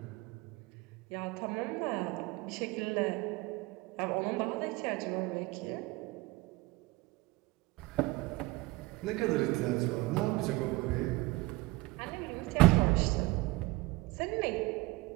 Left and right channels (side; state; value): left; quieter; 21.8 dB